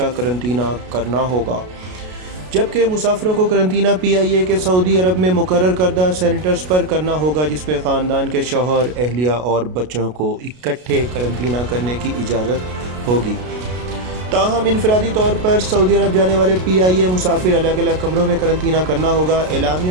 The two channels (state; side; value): late; left; 33 ms